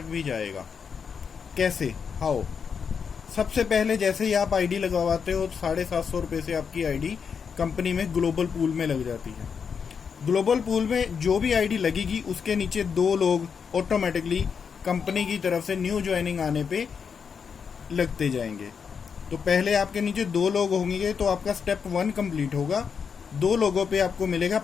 भी जाएगा। कैसे, हाउ? सबसे पहले जैसे ही आप आईडी लगवाते हो 750 रुपये से आपकी आईडी कंपनी में ग्लोबल पूल में लग जाती है। ग्लोबल पूल में जो भी आईडी लगेगी उसके नीचे 2 लोग ऑटोमेटिकली कंपनी की तरफ से न्यू ज्वाइनिंग आने पे लगते जाएंगे। तो पहले आपके नीचे 2 लोग होंगे तो आपका स्टेप 1 कंप्लीट होगा। 2 लोगों पे आपको मिलेगा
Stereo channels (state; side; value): quieter; right; 6.4 dB